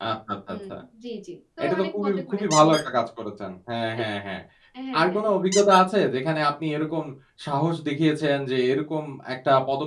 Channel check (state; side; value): identical; both; correlation 1.00